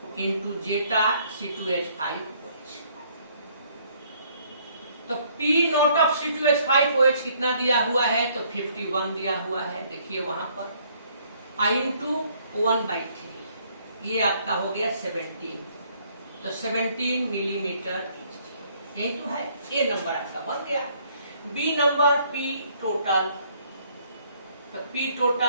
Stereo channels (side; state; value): both; inverted; correlation -0.64